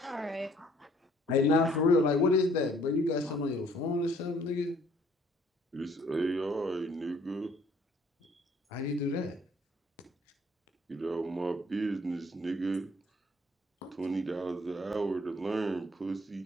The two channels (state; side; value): normal; both; correlation 0.61